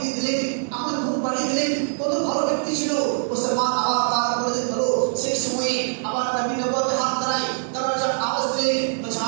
দিয়ে দিলেন, আমার ঘুম পাড়িয়ে দিলেন, কত ভালো ব্যক্তি ছিল। মুসলমান আবার তার করে হলো সেই সময়ে আবার নবী নবুয়তে হাত ধরাই, দরজা আওয়াজ দিলেন, বলছে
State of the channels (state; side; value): silent; left; digital silence